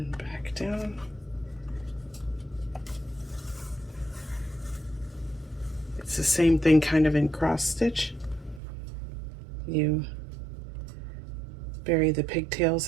then back down. It's the same thing kind of in cross stitch. You bury the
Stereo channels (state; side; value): drops out; left; at 8.6 s